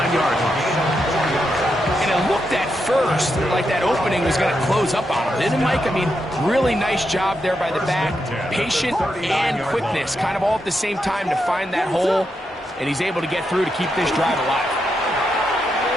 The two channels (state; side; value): normal; both; correlation 0.84